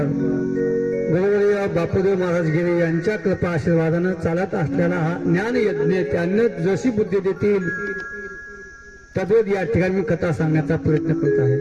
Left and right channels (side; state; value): both; identical; correlation 1.00